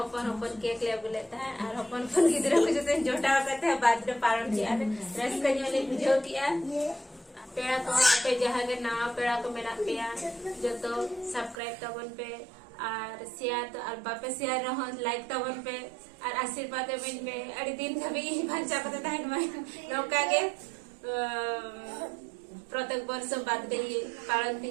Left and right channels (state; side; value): drops out; left; at 11.6 s